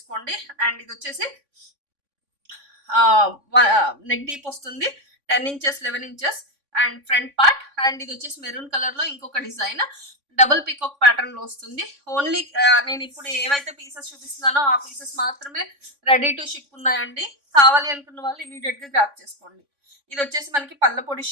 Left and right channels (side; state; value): left; late; 3.5 ms